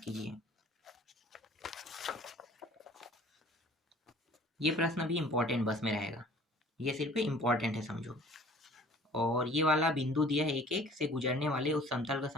कीजिए। ये प्रश्न भी इंपॉर्टेंट बस में रहेगा, ये सिर्फ इंपॉर्टेंट है समझो। और ये वाला बिंदु दिया है, एक एक से गुजरने वाले उस समतल का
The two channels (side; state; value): both; normal; correlation 0.50